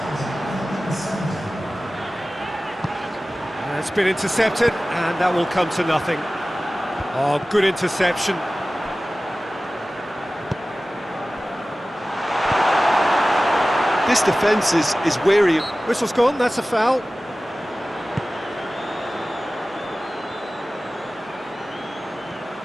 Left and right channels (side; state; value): both; normal; correlation 0.97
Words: It's been intercepted, and that will come to nothing. Oh, good interception. This defence is wary. Whistle's gone, that's a foul.